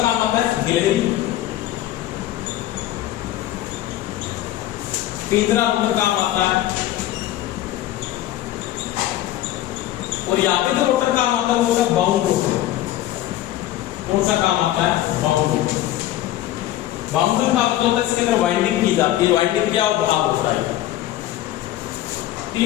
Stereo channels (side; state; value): right; quieter; 14.0 dB